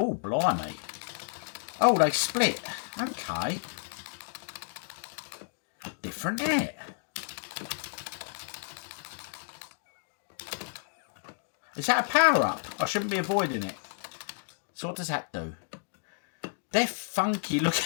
blimey. Oh, they split. Okay. Different, isn't it? Is that a power-up? I shouldn't be avoiding it. So what does that do? They're funky looking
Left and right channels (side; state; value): right; silent; digital silence